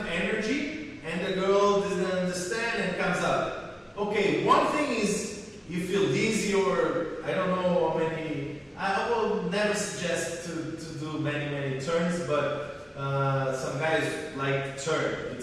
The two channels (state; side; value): identical; both; correlation 1.00